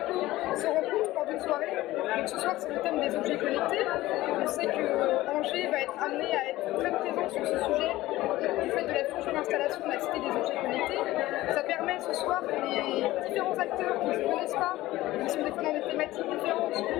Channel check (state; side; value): quieter; right; 17.0 dB